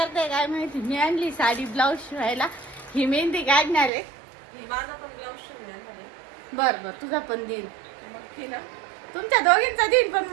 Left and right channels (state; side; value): drops out; left; at 3.9 s